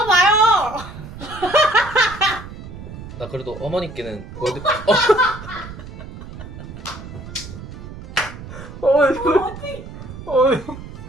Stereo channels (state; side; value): noise; right; rumble, 13 dB below the sound